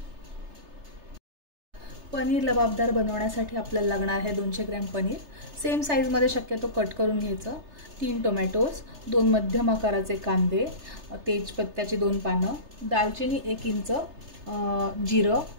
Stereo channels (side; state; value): left; late; 3.3 ms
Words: पनीर लबाबदार बनवण्यासाठी आपल्याला लागणार आहे 200 ग्रॅम पनीर। सेम साईजमध्ये शक्यतो कट करून घ्यायचं। 3 टोमॅटोज, 2 मध्यम आकाराचे कांदे, तेजपत्त्याची 2 पानं, दालचिनी 1 इंच, जिरं,